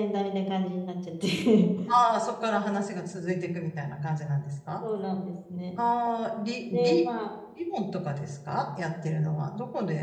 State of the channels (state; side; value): identical; both; correlation 1.00